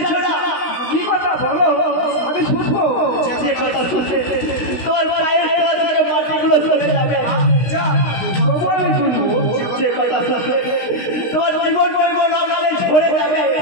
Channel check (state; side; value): late; right; 16 ms